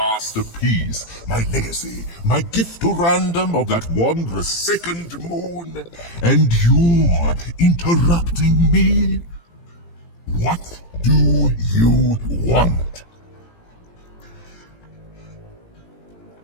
my legacy, my gift to random of that wondrous second moon. And you're interrupting me? What do you want?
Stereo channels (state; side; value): late; right; 18 ms